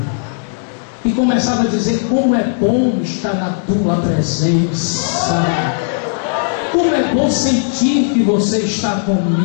E começava a dizer: como é bom estar na tua presença. Como é bom sentir que você está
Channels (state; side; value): silent; right; digital silence